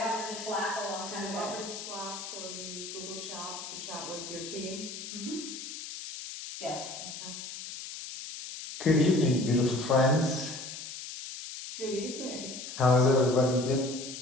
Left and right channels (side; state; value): left; noise; hiss, 9 dB below the sound